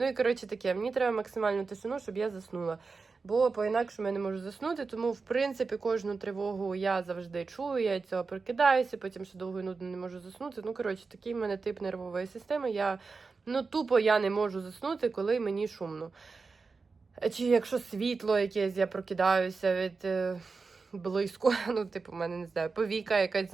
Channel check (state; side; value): quieter; left; 4.4 dB